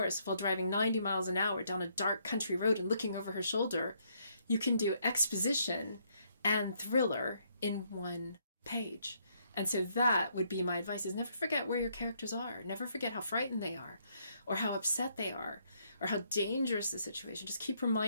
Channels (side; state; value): both; inverted; correlation -0.71